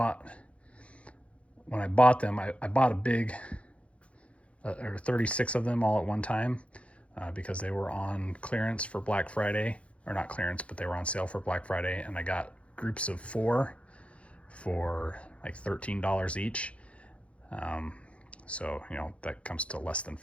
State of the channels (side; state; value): right; late; 0.062 ms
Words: when I bought them, I bought a big, or 36 of them all at one time, because they were on clearance for Black Friday, or not clearance, but they were on sale for Black Friday, and I got groups of 4 for like $13 each. So, that comes to less than